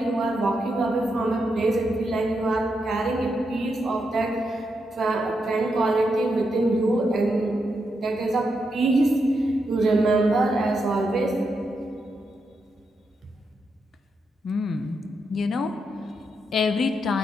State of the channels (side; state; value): both; normal; correlation 0.83